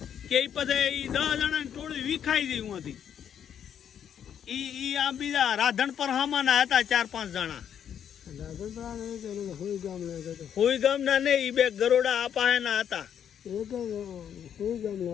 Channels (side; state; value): right; quieter; 8.9 dB